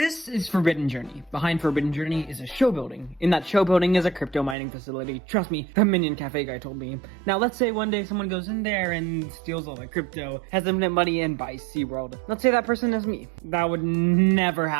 This is Forbidden Journey. Behind Forbidden Journey is a show building. In that show building is a crypto mining facility. Trust me, the Minion Cafe guy told me. Now let's say one day someone goes in there and steals all the crypto, has infinite money, and buys SeaWorld. Let's say that person is me. That would never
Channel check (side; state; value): left; drops out; at 4.5 s